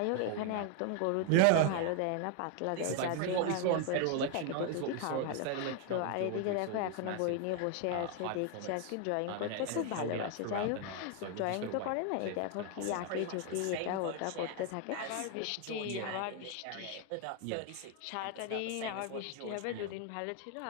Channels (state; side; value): different; both; correlation 0.00